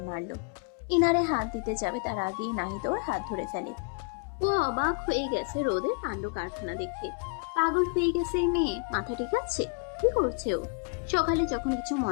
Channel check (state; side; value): quieter; right; 35.1 dB